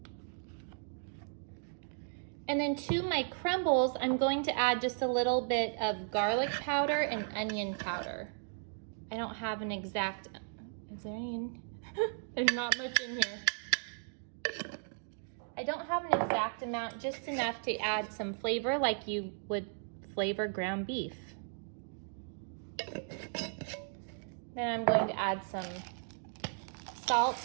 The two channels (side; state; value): left; silent; digital silence